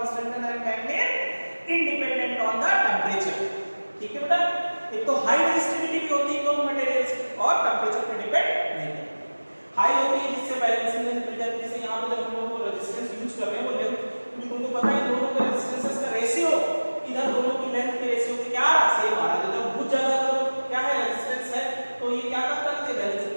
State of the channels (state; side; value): inverted; both; correlation -1.00